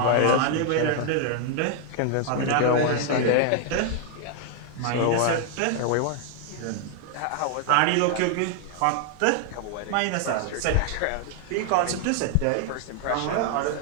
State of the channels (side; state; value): both; different; correlation 0.00